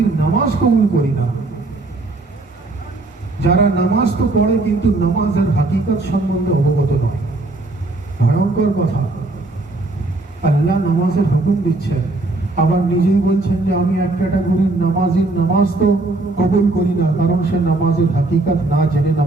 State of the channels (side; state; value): left; quieter; 3.0 dB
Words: নামাজ কবুল করি না, যারা নামাজ তো পড়ে কিন্তু নামাজের হাকিকত সম্বন্ধে অবগত নয়। ভয়ঙ্কর কথা। আল্লাহ নামাজের হুকুম দিচ্ছেন, আবার নিজেই বলছেন যে আমি এক ক্যাটাগরির নামাজির নামাজ তো কবুল করি না, কারণ সে নামাজের হাকিকত না জেনে